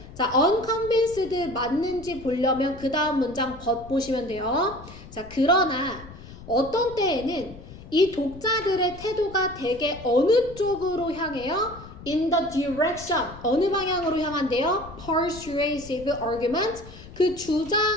자, unconvinced 맞는지 보려면 그 다음 문장 보시면 돼요. 자, 그러나 어떤 때에는 이 독자들의 태도가 되게 어느 쪽으로 향해요? In the direction. 어느 방향으로 향한대요? Persuasive argument. 그 주장,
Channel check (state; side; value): noise; left; rumble, 16 dB below the sound